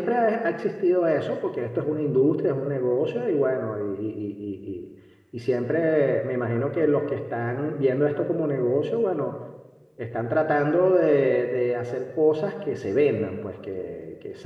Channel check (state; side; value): identical; both; correlation 1.00